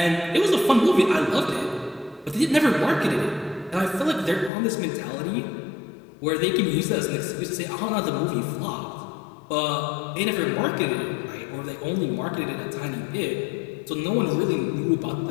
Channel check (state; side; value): drops out; right; at 4.5 s